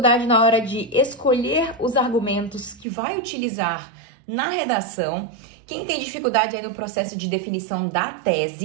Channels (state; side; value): drops out; left; at 2.9 s